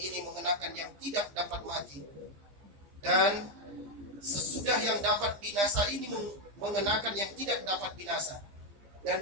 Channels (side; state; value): left; late; 15 ms